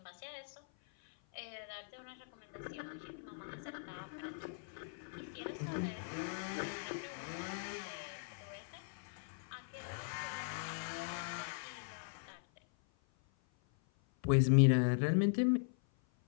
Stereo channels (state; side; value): silent; right; 51 dB below the other